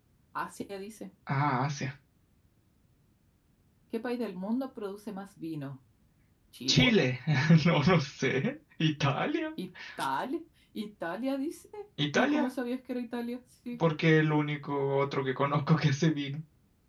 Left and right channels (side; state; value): both; identical; correlation 1.00